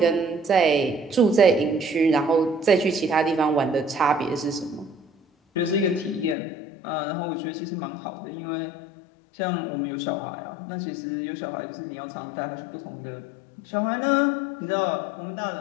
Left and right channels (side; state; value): right; drops out; at 6.4 s